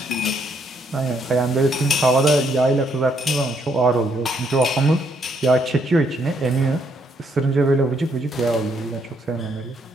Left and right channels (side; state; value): both; normal; correlation 0.72